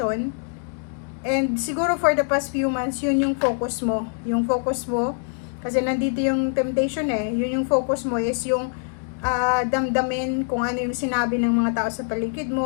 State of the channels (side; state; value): right; silent; 56 dB below the other